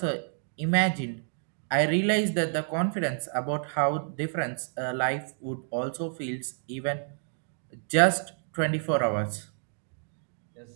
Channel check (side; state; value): left; silent; digital silence